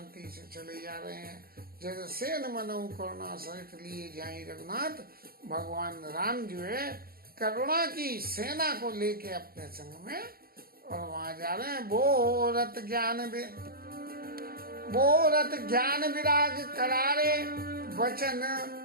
से चले जा रहे हैं, जैसे सेन मनहु करुणा सहित लिए जाए रघुनाथ। भगवान राम जो है करुणा की सेना को लेके अपने संग में और वहां जा रहे हैं। बोरत ज्ञान विराग करारे, वचन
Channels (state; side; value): late; left; 0.44 ms